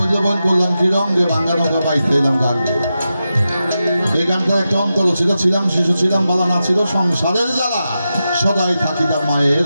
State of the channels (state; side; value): inverted; both; correlation -0.90